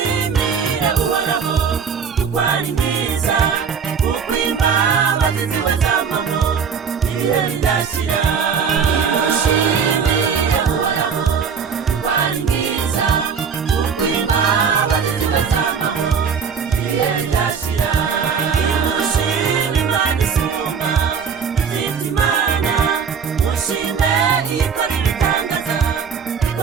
uhoraho kuko ari mwiza kuko imbabazi ziwe zamaho ibihe bidashira nimushimire uhoraho kuko ari mwiza kuko imbabazi ziwe zamaho ibihe bidashira nimushime Imana isumba izindi imana mushime ikora ibitangaza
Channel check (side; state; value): left; quieter; 6.5 dB